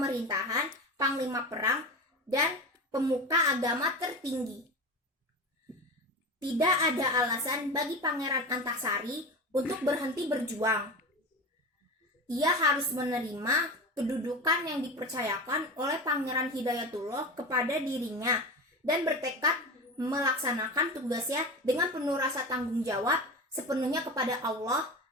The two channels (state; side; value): normal; both; correlation 0.27